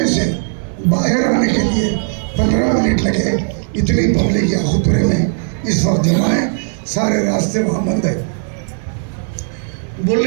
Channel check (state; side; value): silent; left; digital silence